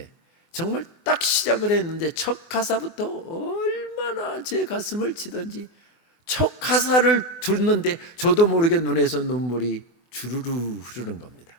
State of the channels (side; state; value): right; late; 23 ms